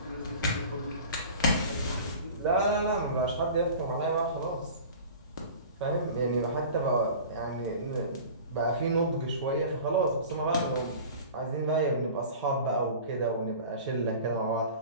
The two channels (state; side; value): inverted; both; correlation -0.40